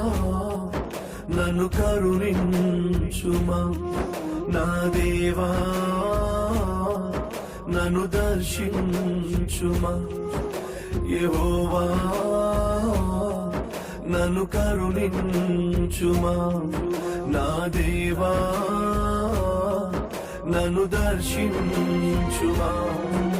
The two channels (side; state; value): both; identical; correlation 1.00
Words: నన్ను కరుణించుమా, నా దేవా నన్ను దర్శించుమా. యెహోవా నన్ను కరుణించుమా, నా దేవా నన్ను దర్శించుమా.